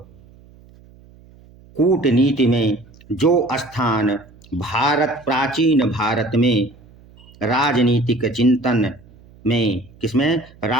कूटनीति में जो स्थान प्राचीन भारत में राजनीतिक चिंतन में किसमें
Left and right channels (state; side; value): noise; right; hum, 25 dB below the sound